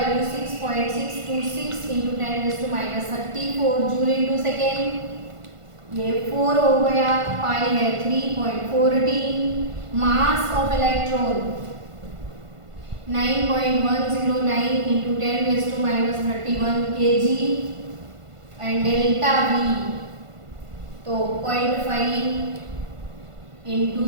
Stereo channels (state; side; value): late; left; 1.5 ms